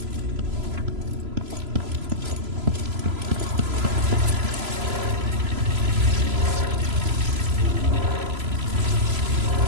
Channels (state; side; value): late; left; 3.0 ms